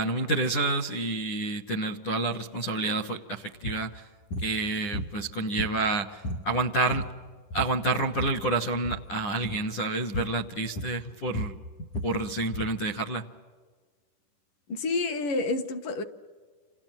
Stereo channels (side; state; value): right; late; 10 ms